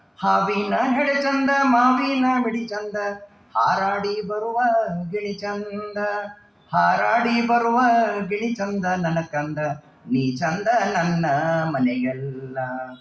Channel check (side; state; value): both; identical; correlation 1.00